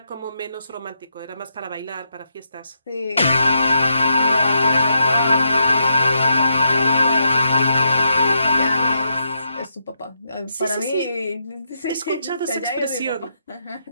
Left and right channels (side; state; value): both; inverted; correlation -0.81